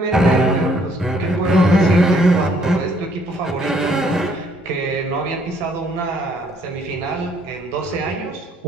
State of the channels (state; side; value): normal; both; correlation 0.65